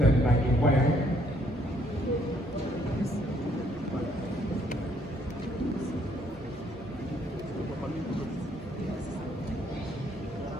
na gịkwa ya.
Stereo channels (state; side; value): normal; both; correlation 0.67